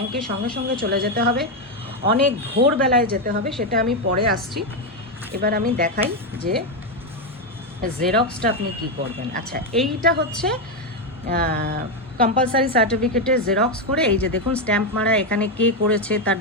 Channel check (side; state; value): both; normal; correlation 0.06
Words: সঙ্গে সঙ্গে চলে যেতে হবে, অনেক ভোরবেলায় যেতে হবে, সেটা আমি পরে আসছি। এবার আমি দেখাই যে জেরক্সটা আপনি কি করবেন। আচ্ছা, এইটা হচ্ছে কম্পালসারি সার্টিফিকেটের জেরক্স করে, এই যে দেখুন স্ট্যাম্প মারা, এখানে কে করেছে, তার